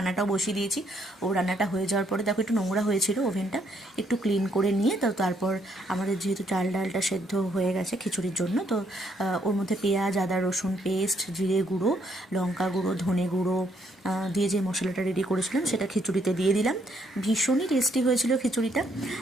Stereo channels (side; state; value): both; normal; correlation 0.71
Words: বসিয়ে দিয়েছি। ও রান্নাটা হয়ে যাওয়ার পরে দেখো একটু নোংরা হয়েছিল ওভেনটা, একটু ক্লিন করে নিয়ে তো তারপর আমাদের যেহেতু চাল ডালটা সেদ্ধ হয়ে গেছে খিচুড়ির জন্য, তো ওর মধ্যে পেঁয়াজ, আদা, রসুন পেস্ট, জিরে গুঁড়ো, লঙ্কা গুঁড়ো, ধনে গুঁড়ো দিয়ে যে মশলাটা রেডি করেছিলাম সেটা খিচুড়িতে দিয়ে দিলাম। ভীষণই টেস্টি হয়েছিল খিচুড়িটা।